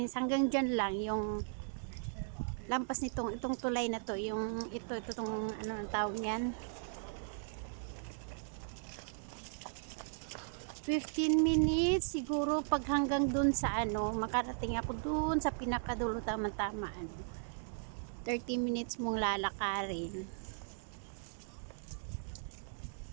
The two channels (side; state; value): left; silent; digital silence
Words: Hanggang dyan lang yung lampas nitong itong tulay na to. Yung itong ano ang tawag niyan. 15 minutes siguro pag hanggang dun sa ano, makarating ako dun sa pinakadulo tama-tama ano. 30 minutes mong lalakarin.